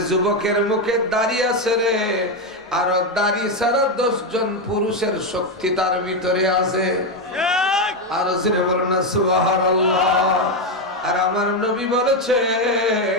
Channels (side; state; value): both; normal; correlation 0.07